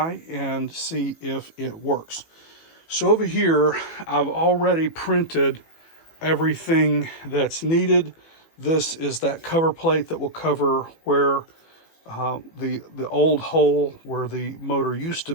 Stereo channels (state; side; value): late; right; 18 ms